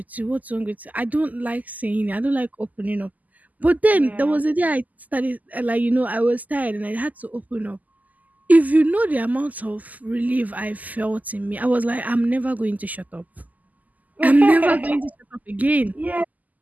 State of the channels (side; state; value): left; late; 0.079 ms